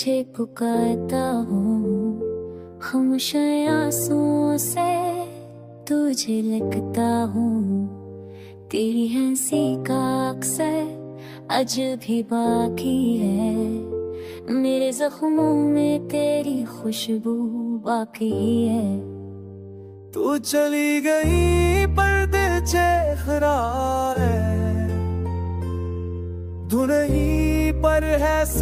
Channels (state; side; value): identical; both; correlation 1.00